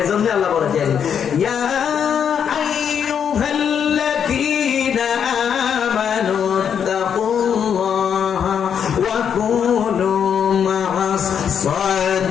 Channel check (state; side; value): quieter; right; 7.9 dB